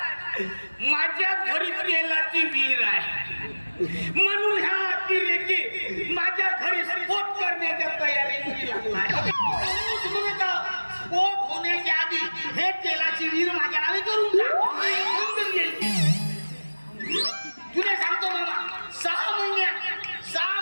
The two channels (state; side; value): inverted; both; correlation -1.00